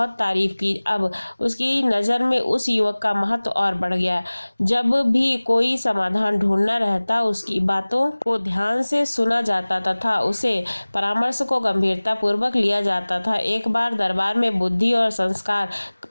तारीफ की। अब उसकी नज़र में उस युवक का महत्व और बढ़ गया। जब भी कोई समाधान ढूंढना रहता, उसकी बातों को ध्यान से सुना जाता तथा उसे परामर्श को गंभीरता पूर्वक लिया जाता था। एक बार दरबार में बुद्धि और संस्कार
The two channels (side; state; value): both; inverted; correlation -1.00